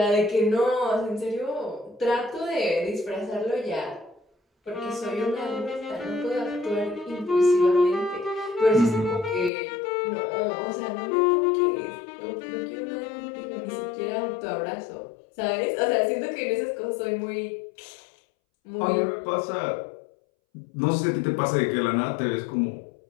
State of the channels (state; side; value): drops out; right; at 9.5 s